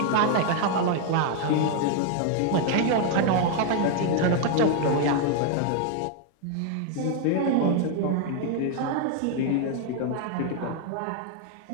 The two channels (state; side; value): different; both; correlation 0.00